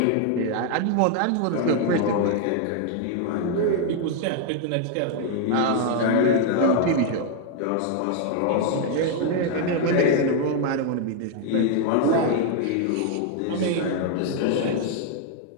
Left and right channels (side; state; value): both; different; correlation 0.00